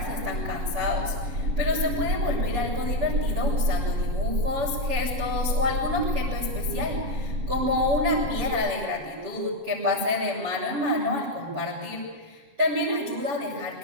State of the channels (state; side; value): late; left; 7.5 ms